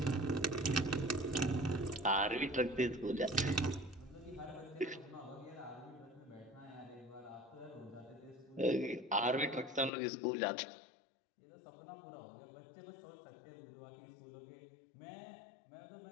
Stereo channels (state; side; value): drops out; right; at 9.9 s